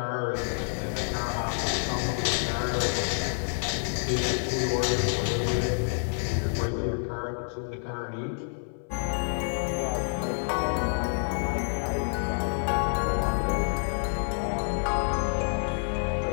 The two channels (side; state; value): right; silent; 59 dB below the other